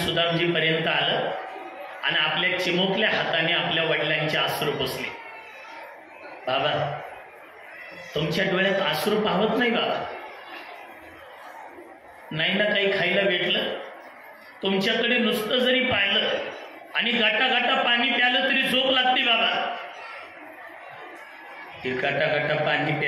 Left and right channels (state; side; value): identical; both; correlation 1.00